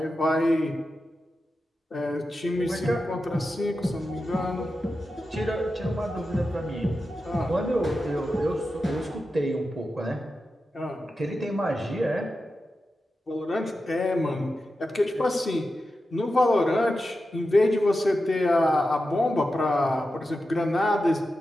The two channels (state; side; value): normal; both; correlation 0.91